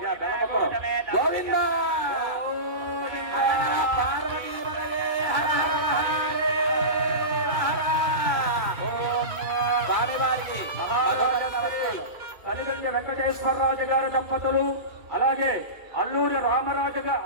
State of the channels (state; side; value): late; left; 2.3 ms